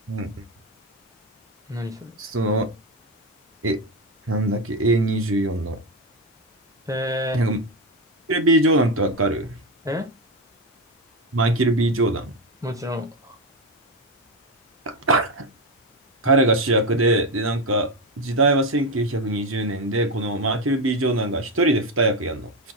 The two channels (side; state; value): both; normal; correlation 0.12